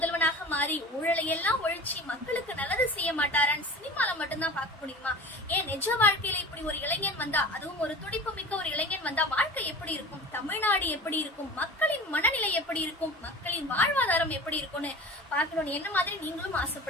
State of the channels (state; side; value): normal; both; correlation 0.37